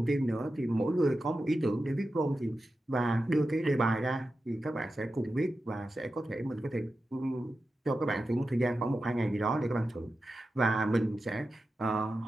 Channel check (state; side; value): normal; both; correlation 0.91